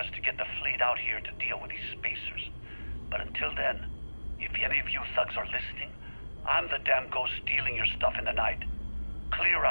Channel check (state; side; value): inverted; both; correlation -1.00